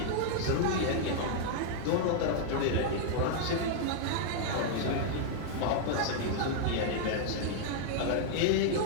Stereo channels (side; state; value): both; different; correlation -0.01